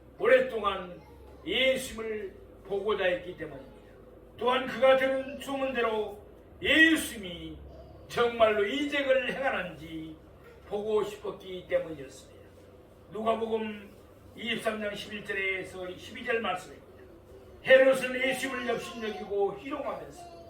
오랫동안 예수님을 보고자 했기 때문입니다. 또한 그가 들은 소문대로 예수님이 정말로 이적을 행하는지 보고 싶었기 때문이었습니다. 누가복음 23장 11절에서 12절 말씀입니다. 헤롯은 예수님을 역신여기고 희롱하면서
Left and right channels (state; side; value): identical; both; correlation 1.00